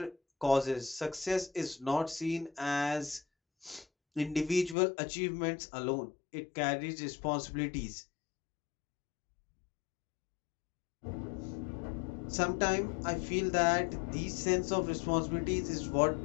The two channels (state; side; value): drops out; right; at 4.8 s